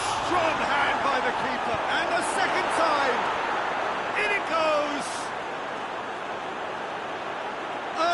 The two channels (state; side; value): identical; both; correlation 1.00